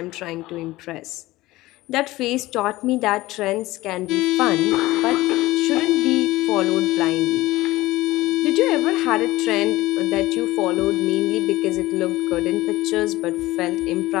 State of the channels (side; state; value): right; quieter; 18.2 dB